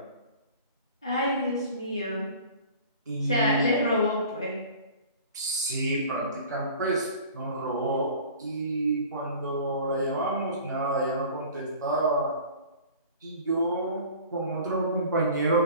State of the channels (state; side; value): inverted; both; correlation -0.44